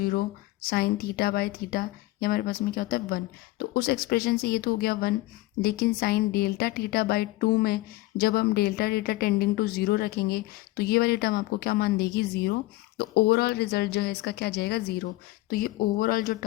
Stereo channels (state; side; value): quieter; right; 18.7 dB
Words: sine theta by theta ये हमारे पास में क्या होता है 1। तो उस एक्सप्रेशन से ये तो हो गया 1, लेकिन साइन डेल्टा थीटा बाई 2 में जब हम डेल्टा थीटा टेंडिंग टू 0 रखेंगे तो ये वाली टर्म आपको क्या मान देगी 0। तो ओवरऑल रिजल्ट जो है इसका क्या जाएगा 0। तो ये ओवरऑल जो